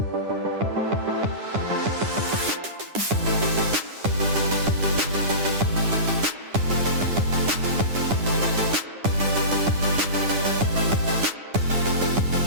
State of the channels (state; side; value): late; left; 9.9 ms